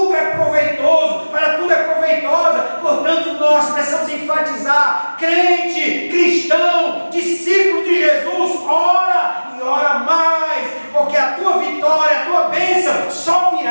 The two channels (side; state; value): both; inverted; correlation -1.00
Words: é proveitoso, para tudo é proveitosa. Portanto, nós precisamos enfatizar: crente, cristão, discípulo de Jesus, ora e ora mais, porque a tua vitória, a tua bênção só